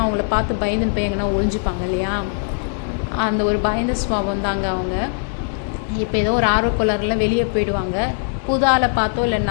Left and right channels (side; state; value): right; silent; digital silence